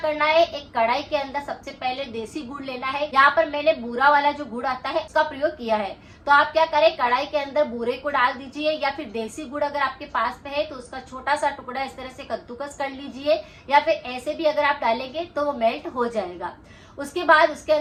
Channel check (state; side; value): identical; both; correlation 1.00